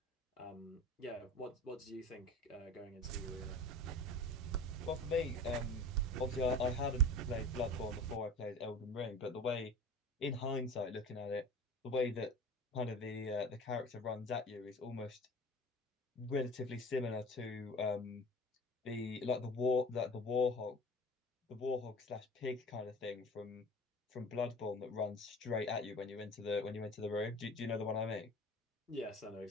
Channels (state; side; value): normal; both; correlation 0.40